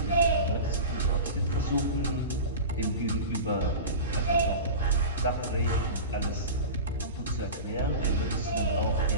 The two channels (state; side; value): inverted; both; correlation -0.31